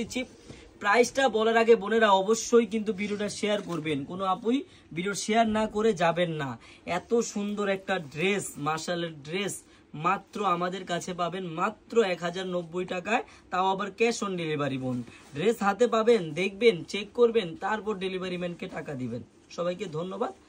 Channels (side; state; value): both; identical; correlation 1.00